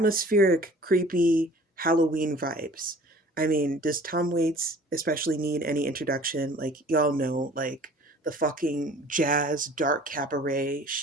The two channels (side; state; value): both; normal; correlation 0.48